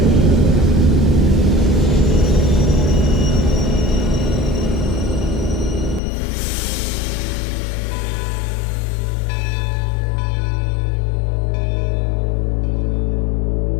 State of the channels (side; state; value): right; drops out; at 6.0 s